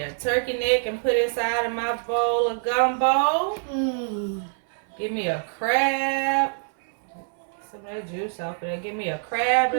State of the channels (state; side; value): silent; left; 62 dB below the other